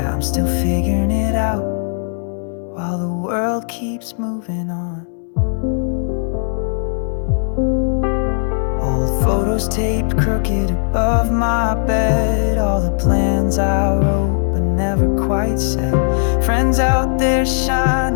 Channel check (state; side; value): silent; right; digital silence